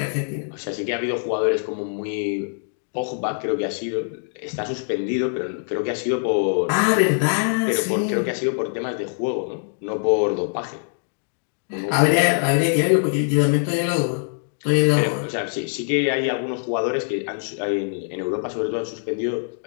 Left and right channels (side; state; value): right; silent; digital silence